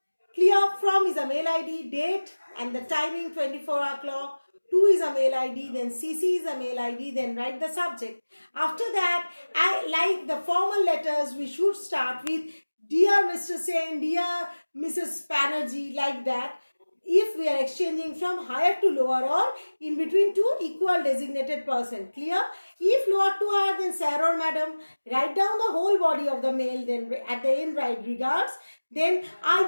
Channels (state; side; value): inverted; both; correlation -1.00